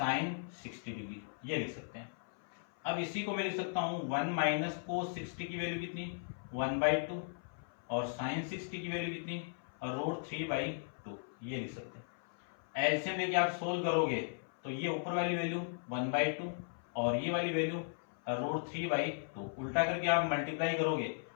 60 डिग्री, ये लिख सकते हैं। अब इसी को मैं लिख सकता हूं 1 माइनस cos 60 की वैल्यू कितनी 1/2 और sin 60 की वैल्यू कितनी √3/2, ये लिख सकते हैं। एलसीएम लेके आप सोल्व करोगे तो ये ऊपर वाली वैल्यू 1/2 और ये वाली वैल्यू √3/2, उल्टा करके आप मल्टीप्लाई करोगे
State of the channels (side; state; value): right; silent; 53 dB below the other